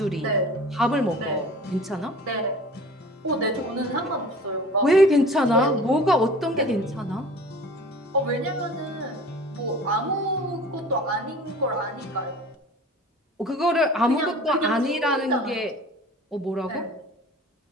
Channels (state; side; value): normal; both; correlation 0.43